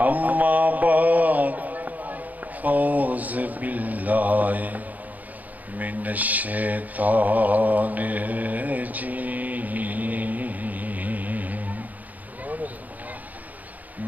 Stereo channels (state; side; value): late; left; 0.079 ms